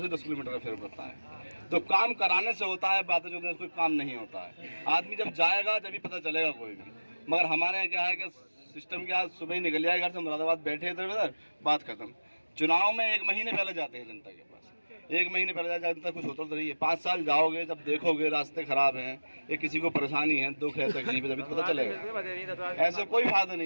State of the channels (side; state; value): both; inverted; correlation -1.00